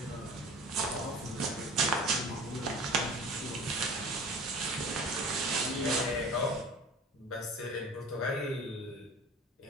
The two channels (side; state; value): both; normal; correlation 0.40